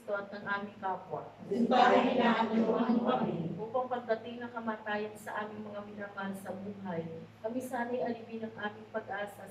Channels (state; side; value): identical; both; correlation 1.00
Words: at ng aming kapwa. Subalit tinutulungan mo kami. Upang pagdating ng kamatayan sa aming mga minamahal sa buhay, kami sana'y alipin ang aming pag-asa